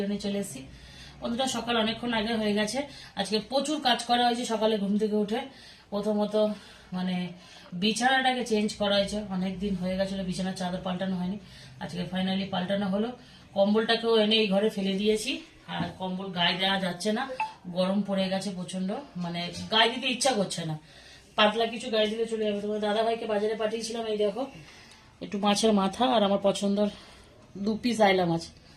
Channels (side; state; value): both; identical; correlation 1.00